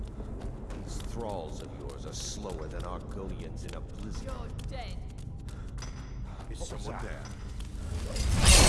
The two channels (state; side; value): identical; both; correlation 1.00